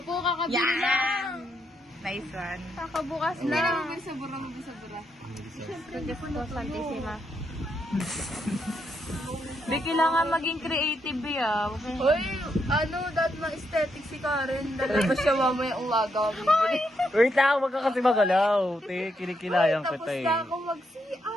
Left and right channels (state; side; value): normal; both; correlation 0.79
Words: po kakabili lang. Nice one. Kakabukas Hindi lang. na Mabisa-bura, mabisa-bura. Diyos ko, Santissima. Di, kailangan maging creative, ah. Uy, ano, dahil ma-aesthetic si Karen. Dahil ba siya mamaya umaga? Wait lang, wag ka kasi magalaw. Te, kinikilayang Tapos kita eh. na ako